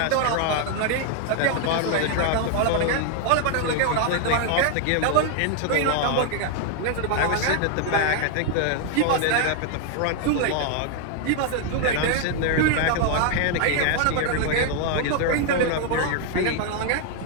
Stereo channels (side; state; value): both; different; correlation 0.00